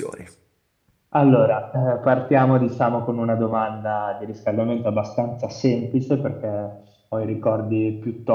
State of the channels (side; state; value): both; identical; correlation 1.00